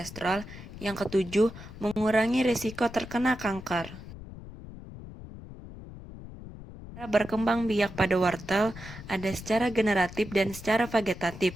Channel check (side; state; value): left; noise; rumble, 14 dB below the sound